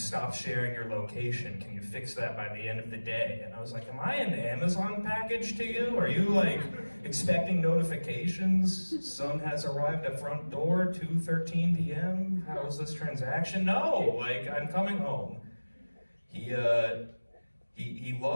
sharing your location. Can you fix that by the end of the day? And I was like, am I an Amazon package to you? Are you like expecting notifications? Son has arrived at front door, 2:13 p.m. How is this transaction? No, like I'm coming home. He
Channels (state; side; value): inverted; both; correlation -1.00